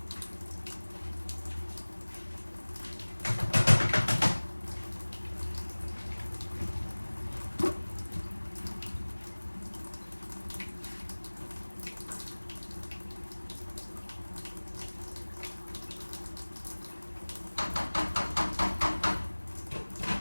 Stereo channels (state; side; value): inverted; both; correlation -1.00